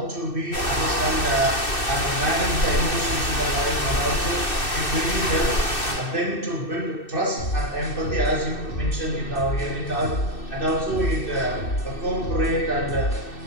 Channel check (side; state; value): right; late; 2.6 ms